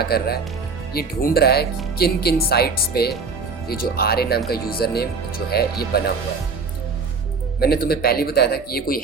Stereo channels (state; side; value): quieter; left; 4.6 dB